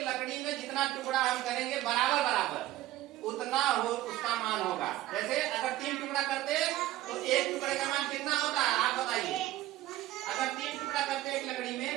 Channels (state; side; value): quieter; left; 15.2 dB